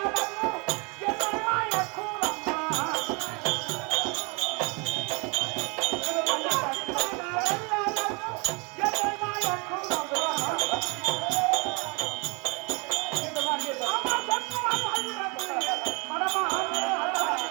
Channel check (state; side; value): quieter; left; 31.1 dB